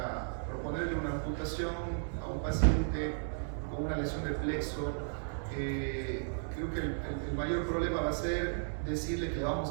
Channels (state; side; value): silent; left; 55 dB below the other